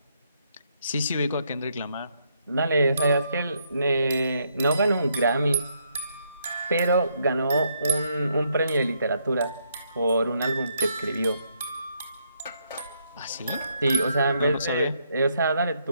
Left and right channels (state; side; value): inverted; both; correlation -0.75